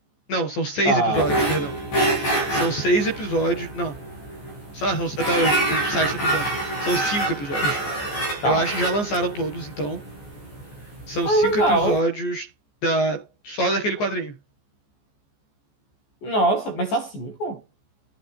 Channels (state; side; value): late; right; 14 ms